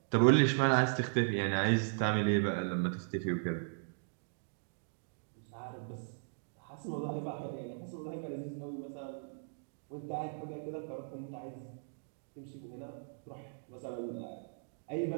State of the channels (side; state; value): left; silent; digital silence